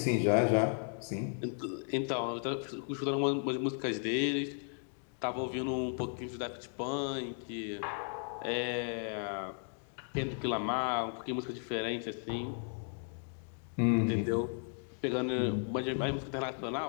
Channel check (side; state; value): right; silent; 54 dB below the other